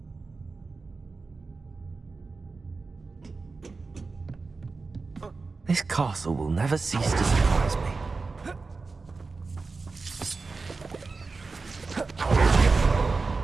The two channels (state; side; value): quieter; left; 4.1 dB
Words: This castle will never cease to surprise me.